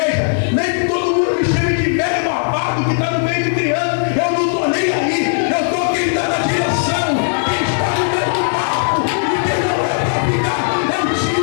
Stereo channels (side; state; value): right; silent; digital silence